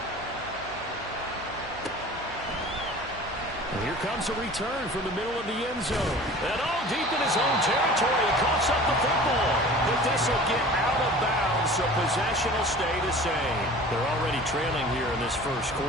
And here comes a return from the middle of the end zone. And all deep in his own territory. He coughs up the football. But this will get out of bounds, so possession will stay the same. They're already trailing here in this first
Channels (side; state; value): right; noise; hum, 19 dB below the sound